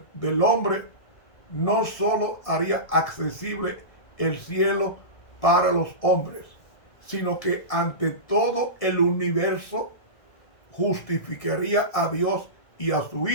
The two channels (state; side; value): late; right; 1.6 ms